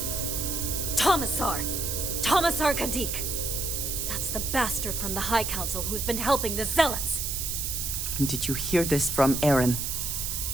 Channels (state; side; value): noise; right; hiss, 2 dB below the sound